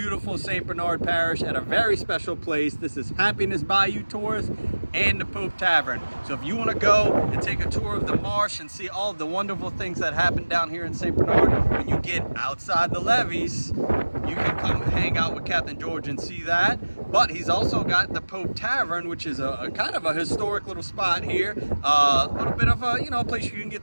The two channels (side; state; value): both; inverted; correlation -1.00